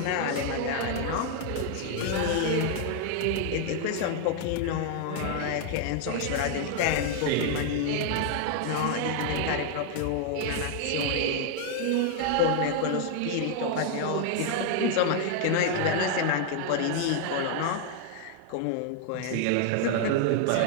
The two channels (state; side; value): different; both; correlation 0.00